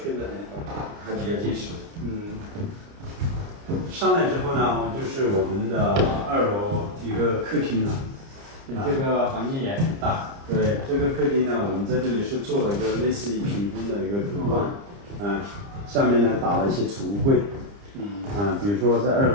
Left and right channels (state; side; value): late; left; 30 ms